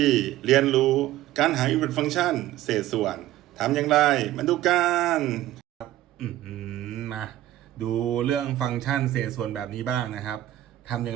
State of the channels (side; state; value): left; quieter; 14.4 dB